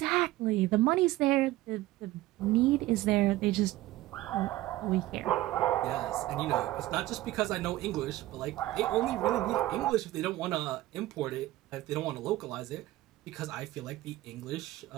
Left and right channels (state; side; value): quieter; left; 16.6 dB